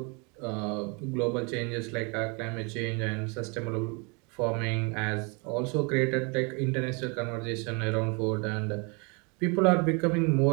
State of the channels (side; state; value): left; quieter; 32.3 dB